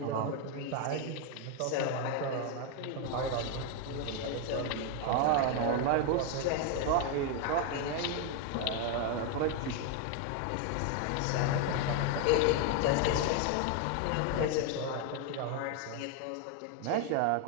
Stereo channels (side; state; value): both; different; correlation 0.01